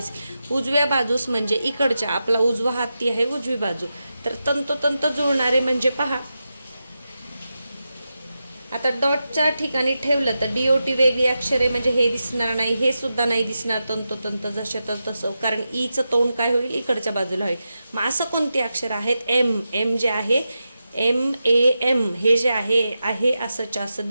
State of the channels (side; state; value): both; inverted; correlation -0.90